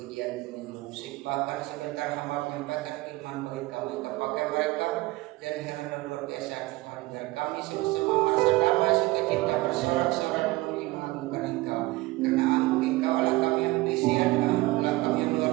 musik, bahkan sebentar hamba menyampaikan firman bagi kami, kepakai mereka dan karena luar biasa Tuhan, biar kami sama-sama merasa damai sukacita bersorak-sorai memuji mengagungkan Engkau, karena Engkau Allah kami yang berisian, Allah kami yang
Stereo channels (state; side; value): quieter; left; 20.2 dB